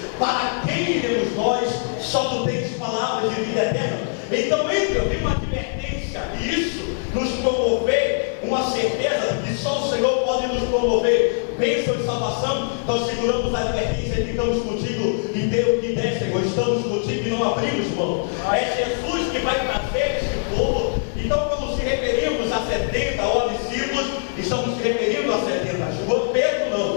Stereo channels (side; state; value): right; silent; digital silence